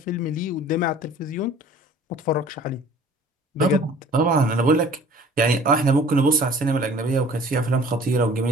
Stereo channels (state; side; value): normal; both; correlation 0.49